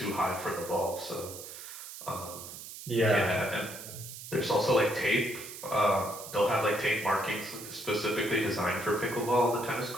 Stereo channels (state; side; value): noise; right; hiss, 12 dB below the sound